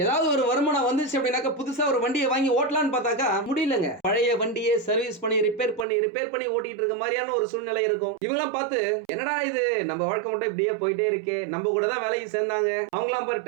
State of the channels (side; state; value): left; drops out; at 5.9 s